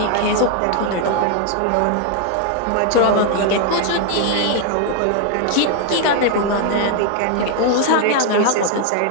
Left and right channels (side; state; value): both; different; correlation 0.00